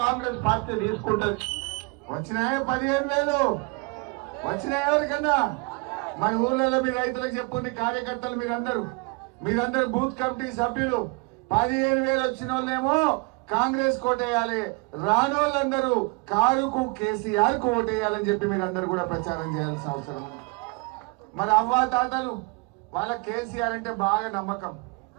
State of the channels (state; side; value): quieter; left; 30.0 dB